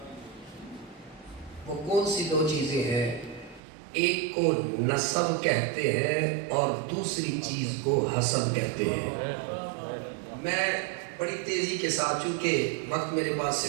وہ کون سی دو چیزیں ہیں؟ ایک کو نسب کہتے ہیں اور دوسری چیز کو حسب کہتے ہیں۔ میں بڑی تیزی کے ساتھ، چونکہ وقت میرے پاس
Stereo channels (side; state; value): left; drops out; at 3.6 s